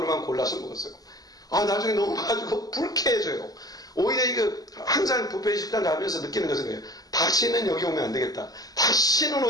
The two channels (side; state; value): right; late; 0.18 ms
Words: 골라서 먹었어요. 나중에 너무 가지고 불쾌해져요. 오히려 이거 항상 뷔페 식당 가면서 느끼는 것은 거예요. 다시는 여기 오면 안 되겠다. 다시는